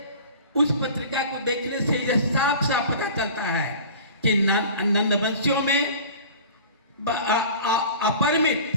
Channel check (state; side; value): inverted; both; correlation -0.41